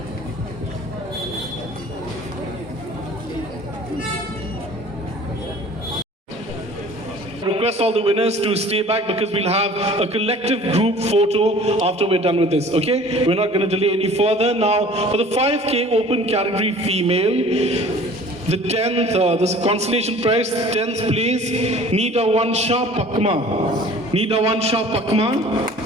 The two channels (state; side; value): normal; both; correlation 0.47